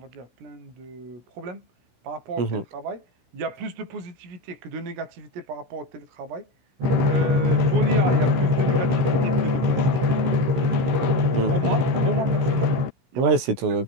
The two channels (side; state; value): left; late; 16 ms